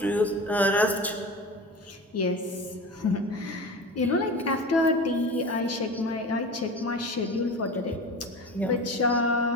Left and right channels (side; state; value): both; normal; correlation 0.32